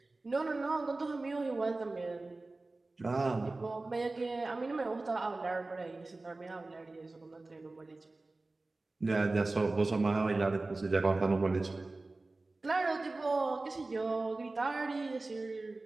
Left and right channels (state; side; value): quieter; left; 3.2 dB